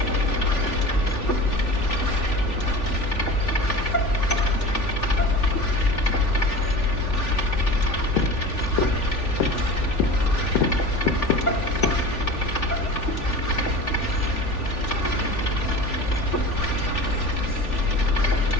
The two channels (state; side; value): late; right; 3.4 ms